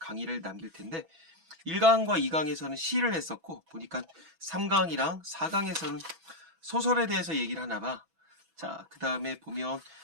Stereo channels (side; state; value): left; late; 6.1 ms